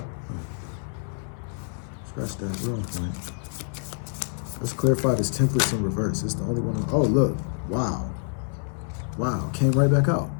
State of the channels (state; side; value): silent; right; 60 dB below the other